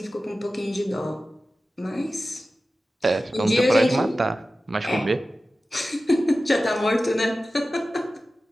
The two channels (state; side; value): normal; both; correlation 0.95